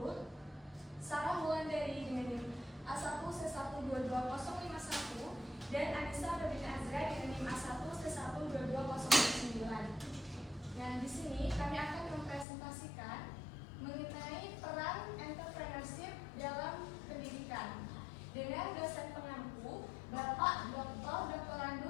Sarah Wulandari dengan NIM A1C1220051, dan Anissa Rabin Azra dengan NIM A1C12209. Nah, di sini kami akan mempresentasikan mengenai peran entrepreneurship dalam pendidikan dengan dosen pengampu Bapak Dr.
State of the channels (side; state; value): right; drops out; at 12.5 s